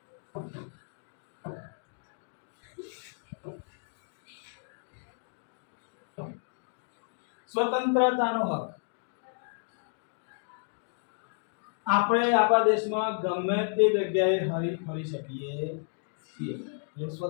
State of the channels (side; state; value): right; silent; digital silence